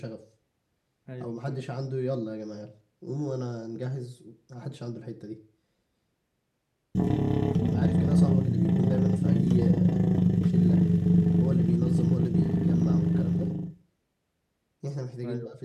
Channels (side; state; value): both; identical; correlation 1.00